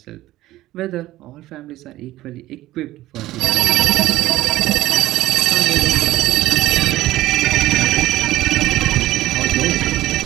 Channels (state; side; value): quieter; left; 15.9 dB